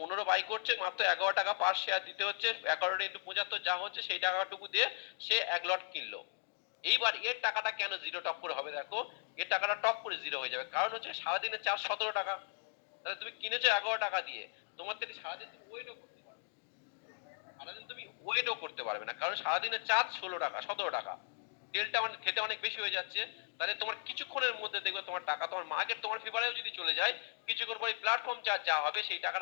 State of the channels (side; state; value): right; silent; digital silence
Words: বাই করছে, মাত্র 11 টাকা পার শেয়ার দিতে হচ্ছে, 11 ইন্টু 75 যা হচ্ছে সেই টাকাটুকু দিয়ে সে 1 লট কিনলো। এইবার এর টাকাটা কেন জিরো টপ করে হবে? দেখো এর টাকাটা টপ করে জিরো হয়ে যাবে, কারণ হচ্ছে সারাদিনের চার্জ 17 টাকা, তাহলে তুমি কিনেছো 11 টাকা দিয়ে, তোমার থেকে সারাদিন তুমি ওয়েটও করতে পারবে, সারাদিন তুমি ওয়েটও করতে পারবে না, কারণ সারাদিনের চার্জ 16 টাকা 17 টাকা, তেলটা মানে খেতে অনেক বেশি হয়ে যাচ্ছে। তাহলে তোমার কিছুক্ষণের মধ্যে দেখবে তোমার টাকা, তোমার মার্কেট তোমার ফেভারেও যদি চলে যায়, কিছুক্ষণ পরে প্ল্যাটফর্ম চার্জ যা হবে সেই